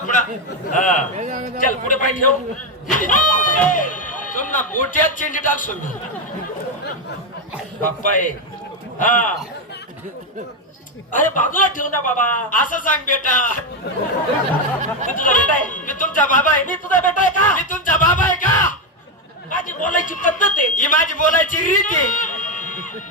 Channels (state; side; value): normal; both; correlation 0.07